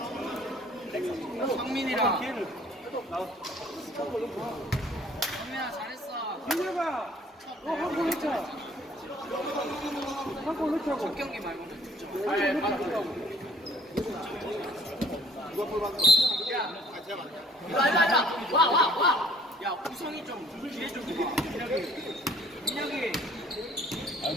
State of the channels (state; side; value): normal; both; correlation 0.57